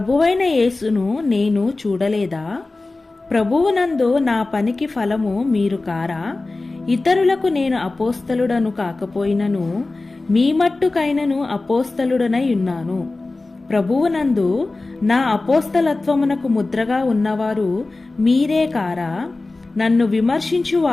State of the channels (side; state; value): right; quieter; 3.3 dB